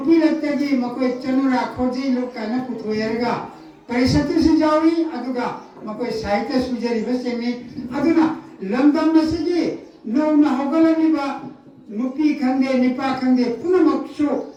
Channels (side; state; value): both; identical; correlation 1.00